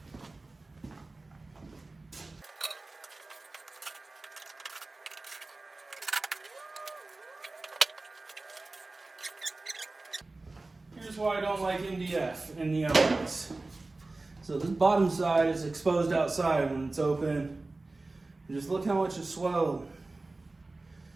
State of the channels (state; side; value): quieter; left; 3.2 dB